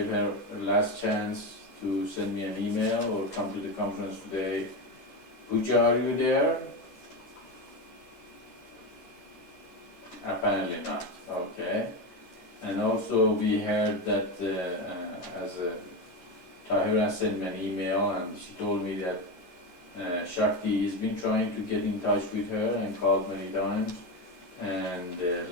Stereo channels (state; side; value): late; right; 11 ms